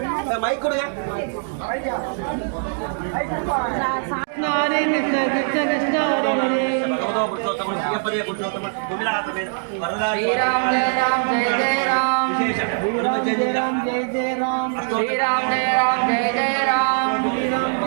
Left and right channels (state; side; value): silent; left; digital silence